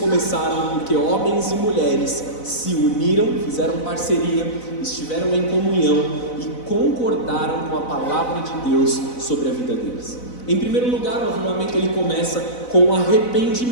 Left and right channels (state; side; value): late; right; 4.0 ms